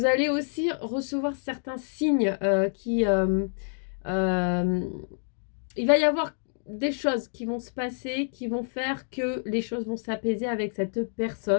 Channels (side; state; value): right; silent; digital silence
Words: allez aussi recevoir certains signes il va y avoir des choses qui vont se passer, qui vont faire que les choses vont s'apaiser avec cette